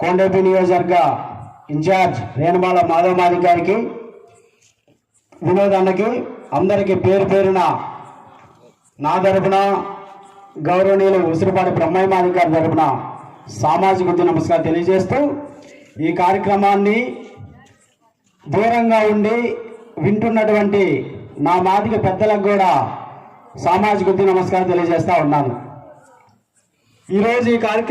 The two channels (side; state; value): both; identical; correlation 1.00